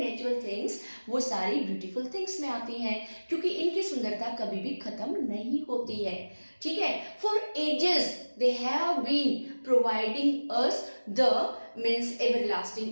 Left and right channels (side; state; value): both; inverted; correlation -1.00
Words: थिंग्स वो सारी ब्यूटीफुल थिंग्स में आती हैं क्योंकि इनकी सुंदरता कभी भी खत्म नहीं होती है. ठीक है, for ages they have been providing us the means